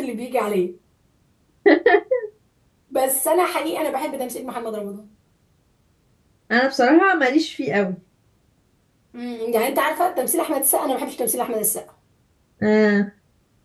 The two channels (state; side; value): identical; both; correlation 1.00